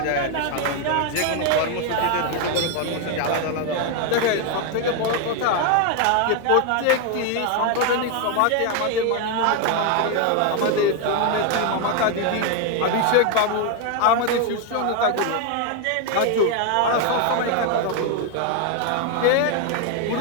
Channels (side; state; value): both; different; correlation 0.01